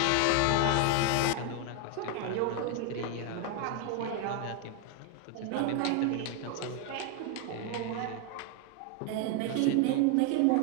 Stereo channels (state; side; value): different; both; correlation 0.01